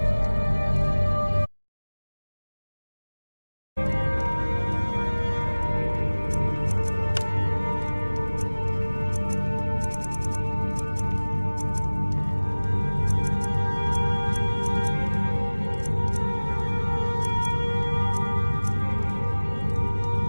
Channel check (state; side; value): inverted; both; correlation -1.00